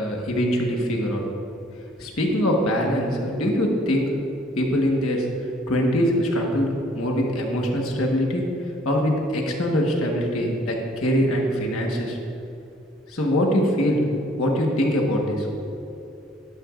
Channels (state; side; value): normal; both; correlation 0.60